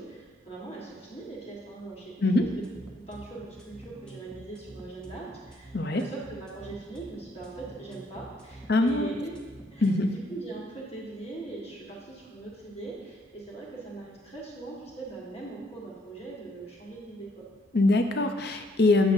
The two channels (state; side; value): normal; both; correlation 0.69